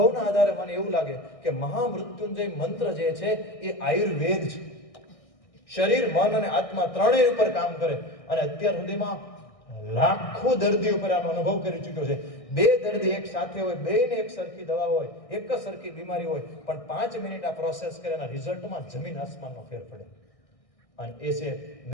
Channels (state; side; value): late; right; 1.6 ms